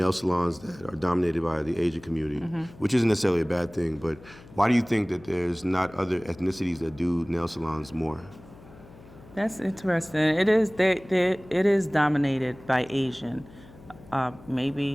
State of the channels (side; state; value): left; noise; hum, 21 dB below the sound